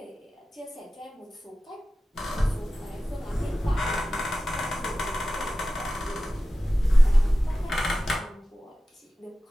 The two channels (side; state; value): both; normal; correlation 0.95